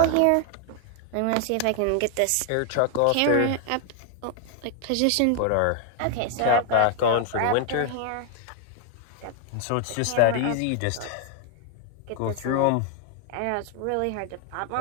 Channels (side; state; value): both; different; correlation 0.00